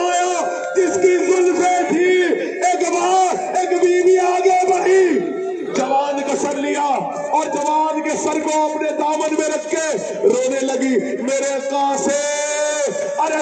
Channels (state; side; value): identical; both; correlation 1.00